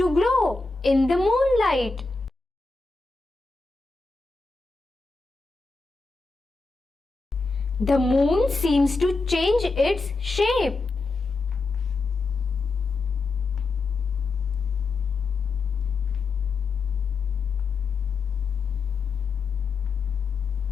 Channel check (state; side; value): quieter; right; 3.8 dB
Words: glow. in the moonlight. The moon seems to change its shape.